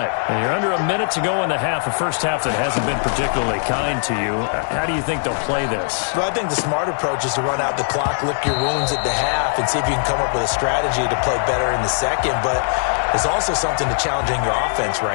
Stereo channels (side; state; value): right; silent; digital silence